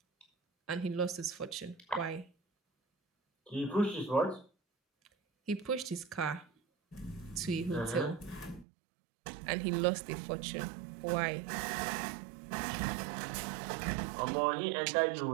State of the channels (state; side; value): drops out; left; at 8.7 s